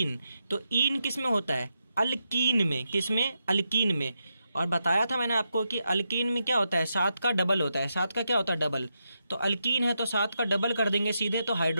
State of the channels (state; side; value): inverted; both; correlation -0.85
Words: तो ईन किस में होता है? अल्कीन में। किस में? अल्कीन में। और बताया था मैंने आपको कि अल्कीन में क्या होता है? 7 का डबल होता है। 7 का क्या होता है? डबल। तो अल्कीन है तो 7 का डबल कर देंगे सीधे, तो